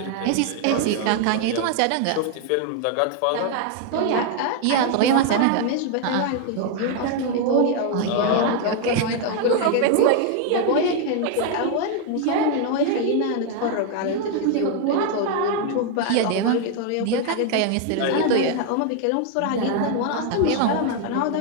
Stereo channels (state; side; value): different; both; correlation 0.00